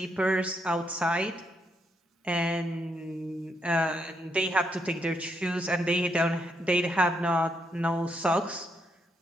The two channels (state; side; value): normal; both; correlation 0.78